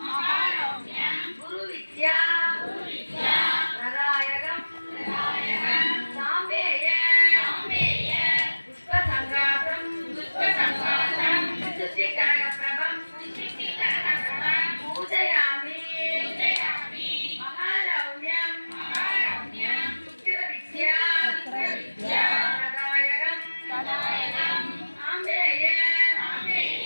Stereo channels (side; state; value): both; inverted; correlation -1.00